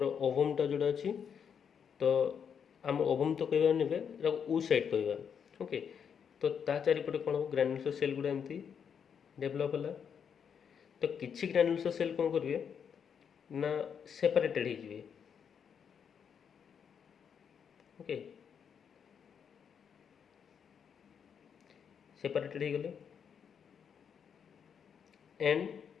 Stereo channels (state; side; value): quieter; right; 7.3 dB